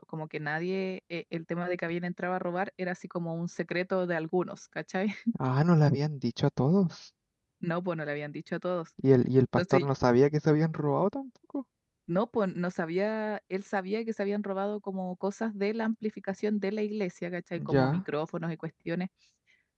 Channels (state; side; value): identical; both; correlation 1.00